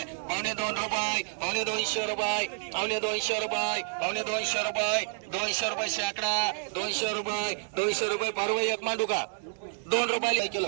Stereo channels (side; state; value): left; silent; 58 dB below the other